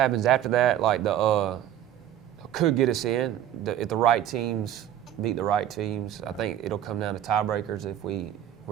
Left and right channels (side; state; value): left; quieter; 11.4 dB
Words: after that, like could get us in. If the right teams beat the right teams, I think it'll come down to tiebreakers if